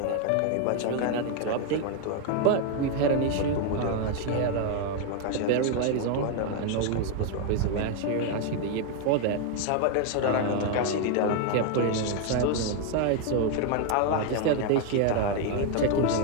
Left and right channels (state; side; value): different; both; correlation 0.01